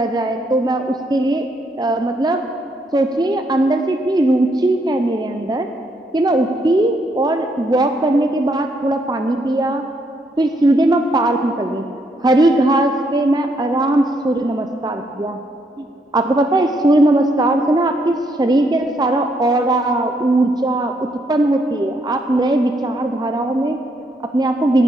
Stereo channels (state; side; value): normal; both; correlation 0.74